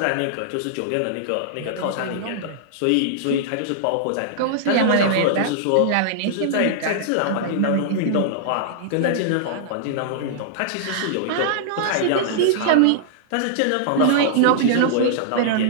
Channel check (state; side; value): different; both; correlation -0.01